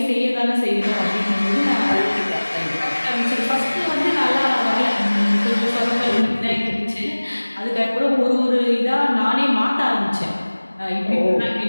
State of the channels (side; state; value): both; inverted; correlation -1.00